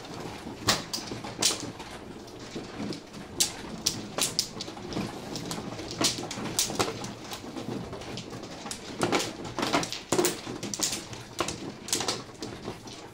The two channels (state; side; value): identical; both; correlation 1.00